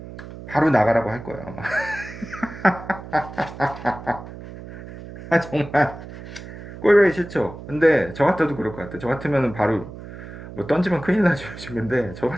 바로 나가라고 할 거예요 아마. 정말 꼴보기 싫죠. 근데 저 같아도 그럴 것 같아요. 저 같으면 바로 뭐 던지면 큰일 나죠. 근데 저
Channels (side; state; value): right; noise; hum, 13 dB below the sound